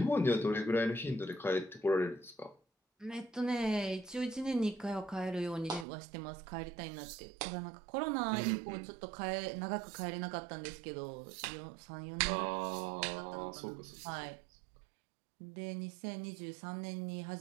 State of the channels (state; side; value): drops out; left; at 5.9 s